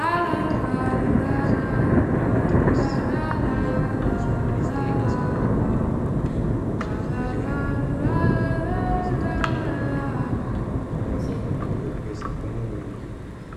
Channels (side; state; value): both; identical; correlation 1.00